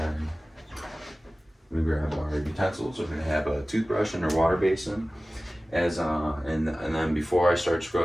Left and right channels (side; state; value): both; normal; correlation 0.97